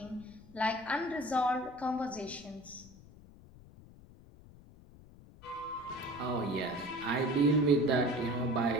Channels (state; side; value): noise; left; rumble, 21 dB below the sound